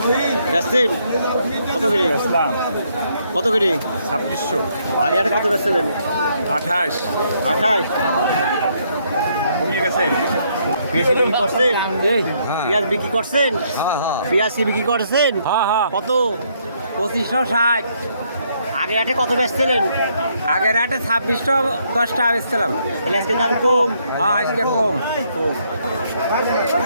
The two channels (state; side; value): inverted; both; correlation -0.72